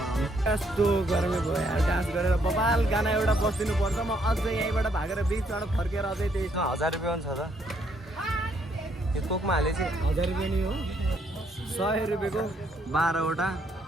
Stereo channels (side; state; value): both; normal; correlation 0.71